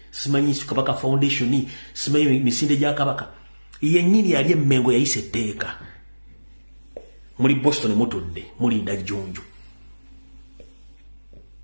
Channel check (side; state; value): both; inverted; correlation -1.00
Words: simanyi Kabaka Foundation simanyi misinde gya Kabaka yennyini yali emmengo yayise etteeka muri Boston mutudde mulinda jjunju